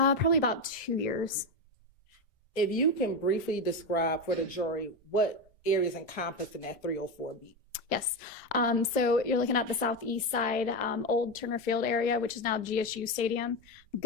about 2 years. If you can briefly describe for the jury what areas encompassed in that 304 beat. Yes. So you're looking at the southeast side, old Turner Field area, which is now GSU Stadium,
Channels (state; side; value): normal; both; correlation 0.14